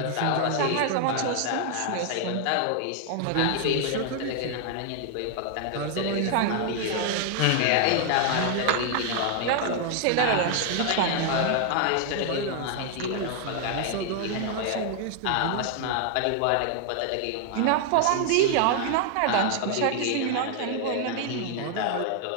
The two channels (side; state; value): both; different; correlation 0.00